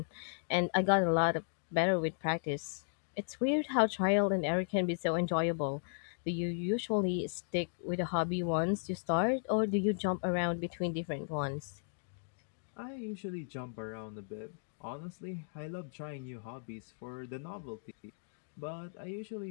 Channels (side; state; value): right; silent; digital silence